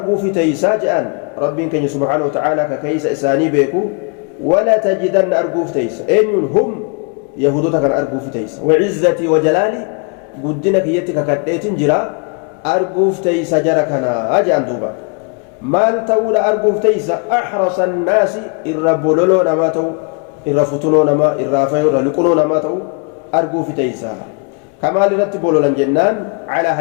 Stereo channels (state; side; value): quieter; right; 36.6 dB